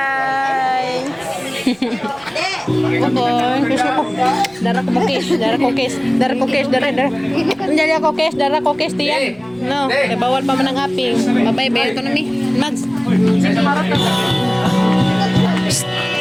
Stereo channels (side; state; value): right; noise; rumble, 29 dB below the sound